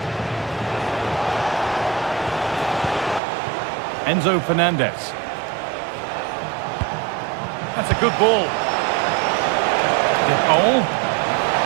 Enzo Fernandez. That's a good ball. DePaul.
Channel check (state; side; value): drops out; left; at 3.2 s